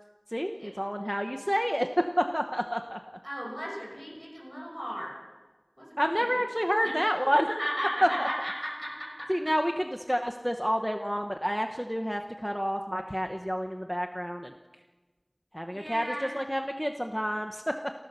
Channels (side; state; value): both; identical; correlation 1.00